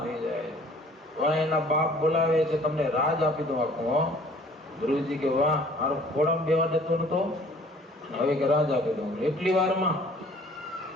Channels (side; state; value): both; normal; correlation 0.54